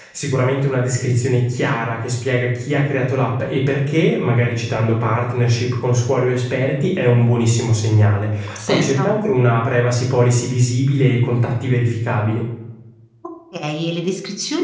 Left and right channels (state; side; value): identical; both; correlation 1.00